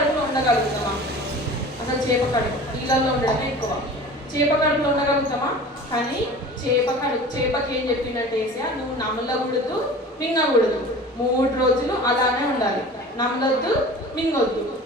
ఉండగలుగుతామా? అసలు చేప కడుపు నీళ్ళల్లో ఉండడమే ఎక్కువ. చేప కడుపులో ఉండగలుగుతామా? కానీ చేపకి ఏం చెప్పిందంటే ఏసయ్య, నువ్వు నమలకూడదు, మింగకూడదు, 3 రోజులు అలానే ఉండాలి, నమలొద్దు, మింగొద్దు.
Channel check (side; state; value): both; normal; correlation 0.40